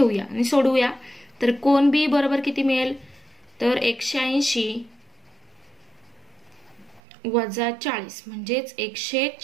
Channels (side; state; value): left; drops out; at 7.0 s